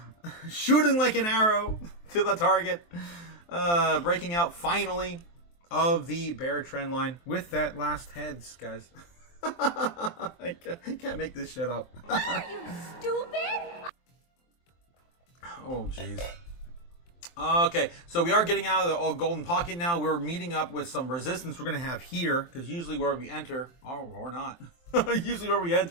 shooting like an arrow to the target, breaking out finally of the bear trend line with that last heads, guys. I can't make this shit up. What are you, stupid? Oh, jeez. Okay, so we are getting out of the golden pocket now. We're meeting up with some resistance we're going to have here, because usually where we enter, or not, usually where we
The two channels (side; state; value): right; late; 23 ms